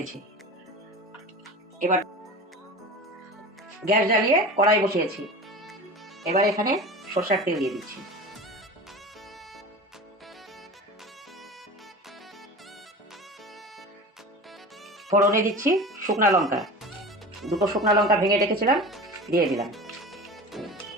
এবার গ্যাস জ্বালিয়ে কড়াই বসিয়েছি। এবার এখানে সরষের তেল দিয়ে দিচ্ছি। ফোড়নে দিচ্ছি শুকনা লঙ্কা, দুটো শুকনা লঙ্কা ভেঙে রেখেছিলাম, দিয়ে দিলাম।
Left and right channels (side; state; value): both; normal; correlation 0.33